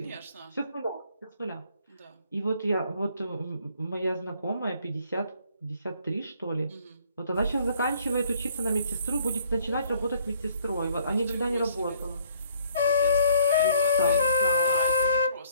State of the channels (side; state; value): both; inverted; correlation -0.62